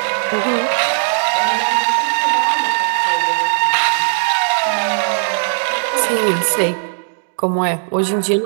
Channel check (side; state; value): left; silent; digital silence